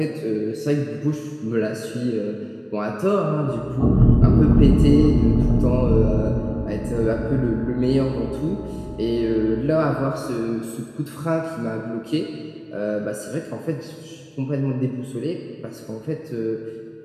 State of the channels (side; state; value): both; identical; correlation 1.00